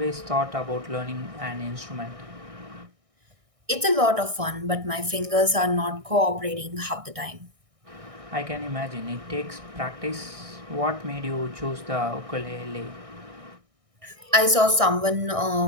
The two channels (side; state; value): left; late; 1.6 ms